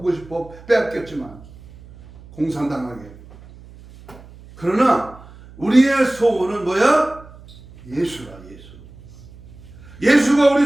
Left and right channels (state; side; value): noise; right; hum, 21 dB below the sound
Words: 싶어. 빼앗겼지만 공산당하게. 그러나 우리의 소원은 뭐야? 예수라. 예수가